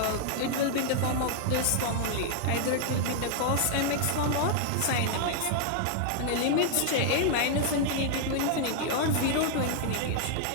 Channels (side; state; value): both; different; correlation 0.00